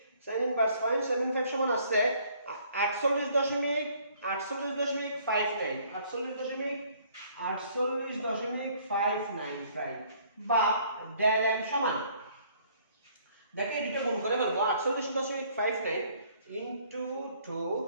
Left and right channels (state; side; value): inverted; both; correlation -0.61